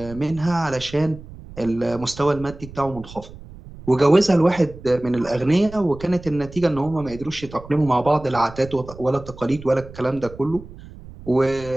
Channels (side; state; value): right; noise; rumble, 16 dB below the sound